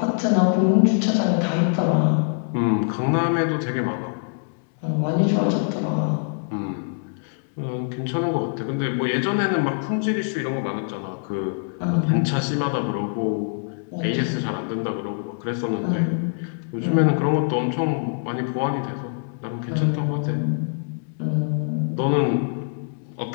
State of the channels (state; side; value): silent; right; 63 dB below the other